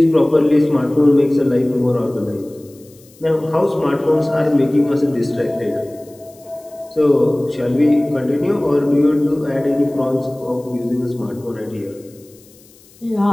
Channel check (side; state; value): left; noise; hiss, 27 dB below the sound